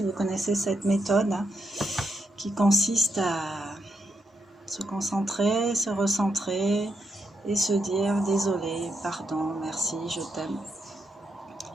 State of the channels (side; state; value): both; normal; correlation 0.81